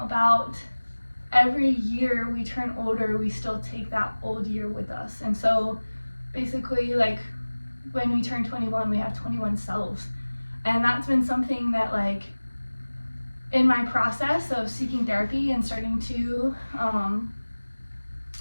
every year we turn older, we still take that old year with us. And so basically like when we turn 21, we have 21 selves. And that's been something that like in my process of seeking therapy and starting to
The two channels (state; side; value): inverted; both; correlation -1.00